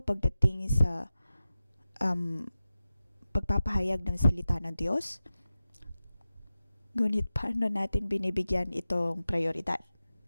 sa pagpapahayag ng salita ng Diyos. Ngunit paano natin binibigyan itong prioridad?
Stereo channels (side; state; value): both; inverted; correlation -0.94